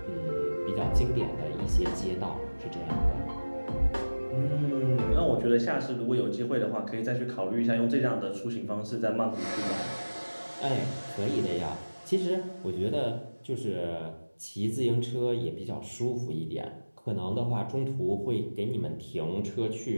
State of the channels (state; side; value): inverted; both; correlation -1.00